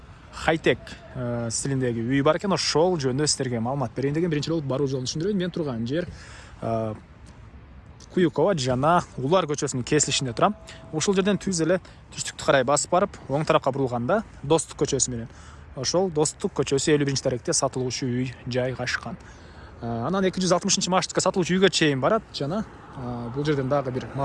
хайтек стилиндеги үй бар экен. Ошол жөнүндө сиздерге маалымат берейин деген биринчи болуп баруу жолун түшүндүрөйүн. Мен турган жер Куюкова жана Улар көчөсүнүн кесилишинде турам. Ушул жерден түз эле түштүктү карай басып барып, оң тарапка бурулганда Достук көчөсү менен ошол Достук көчөсү 51-даректе сатылуучу үй жайгашкан. Анан 260 маршрутка сатылуучу үйгө чейин барат жана бул жерден дагы бир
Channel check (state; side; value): identical; both; correlation 1.00